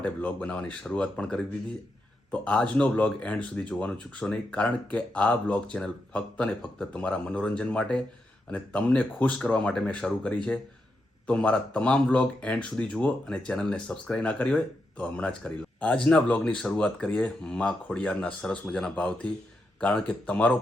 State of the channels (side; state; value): both; normal; correlation 0.85